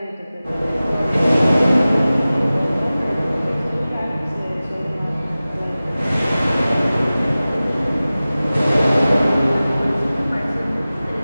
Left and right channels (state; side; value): inverted; both; correlation -0.97